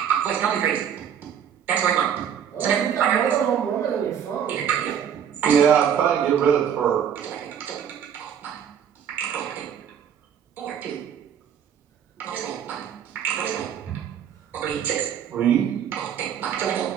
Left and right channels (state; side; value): quieter; left; 8.6 dB